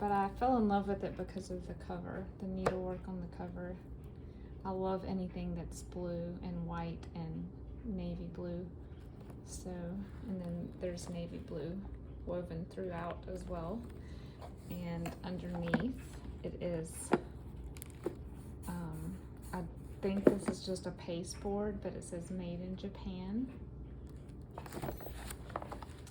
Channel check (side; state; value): both; identical; correlation 1.00